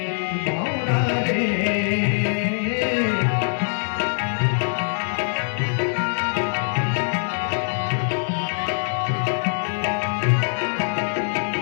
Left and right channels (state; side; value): silent; right; digital silence